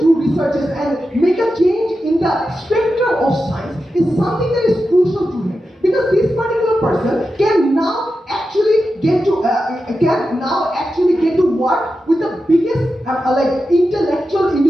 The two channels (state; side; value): normal; both; correlation 0.90